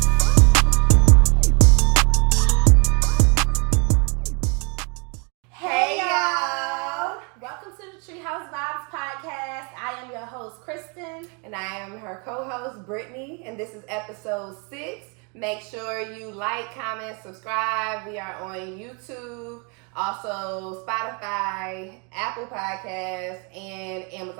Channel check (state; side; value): quieter; left; 34.2 dB